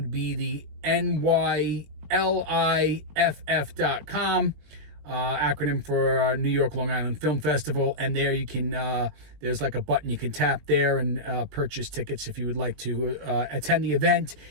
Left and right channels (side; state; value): left; late; 20 ms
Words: be the NYLIFF.com, acronym for New York Long Island Film Festival. And there you can, there's like a button you can tap there and purchase tickets if you would like to attend the event.